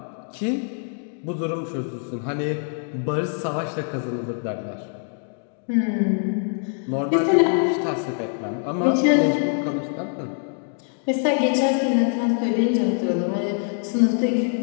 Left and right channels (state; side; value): silent; right; 56 dB below the other